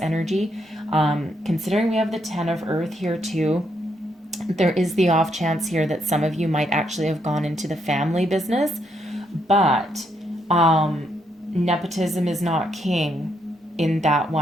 Considering we have the 10 of Earth here too, there is the off chance here that some of you might actually have gone into the family business, but nepotism is not king in that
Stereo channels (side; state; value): both; normal; correlation 0.76